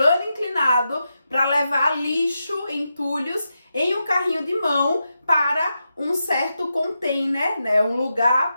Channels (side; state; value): both; inverted; correlation -0.87